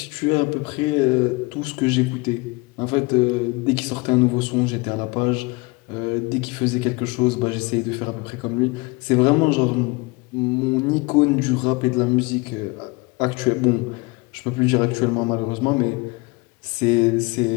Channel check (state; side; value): quieter; right; 25.8 dB